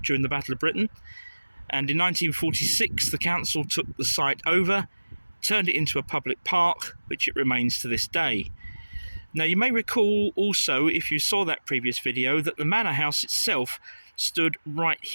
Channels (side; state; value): both; inverted; correlation -1.00